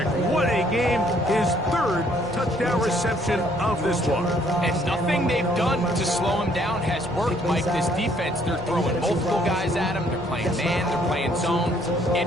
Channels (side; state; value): both; normal; correlation 0.65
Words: What a game. His 3rd touchdown reception of this one. And nothing they've done to slow him down has worked, Mike. This defense, they're throwing multiple guys at him. They're playing man, they're playing zone. It